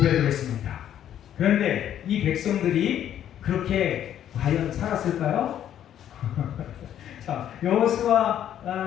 했습니다. 그런데 이 백성들이 그렇게 과연 살았을까요? 자, 여호수아의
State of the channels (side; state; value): right; quieter; 10.6 dB